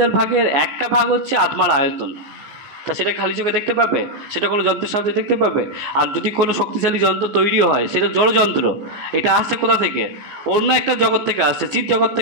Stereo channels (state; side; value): late; left; 14 ms